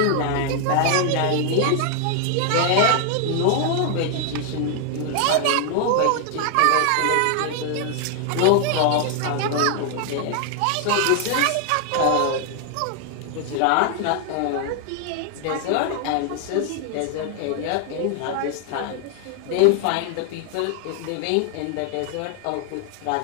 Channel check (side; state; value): both; different; correlation 0.00